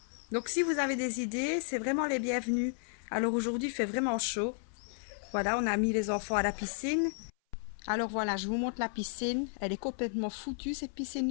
Donc si vous avez des idées, c'est vraiment les bienvenus. Alors aujourd'hui il fait vraiment chaud. Voilà, on a mis les enfants à la piscine. Alors voilà, je vous montre la piscine. Elle est complètement foutue cette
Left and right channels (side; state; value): right; silent; 56 dB below the other